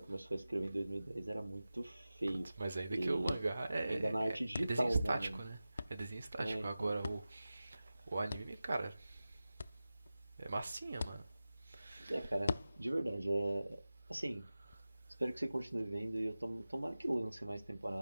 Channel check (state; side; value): inverted; both; correlation -0.95